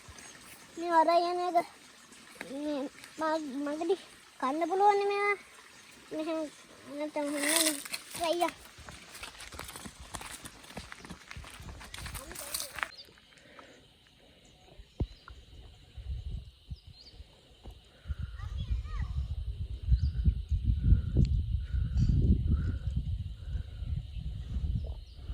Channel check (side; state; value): both; identical; correlation 1.00